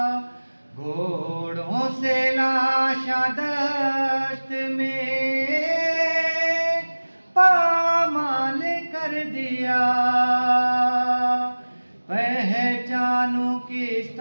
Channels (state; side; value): inverted; both; correlation -1.00